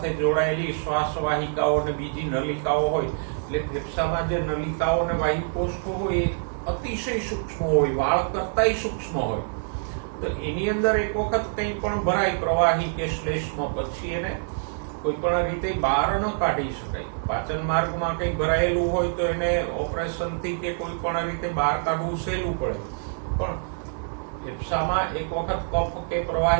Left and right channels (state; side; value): silent; left; digital silence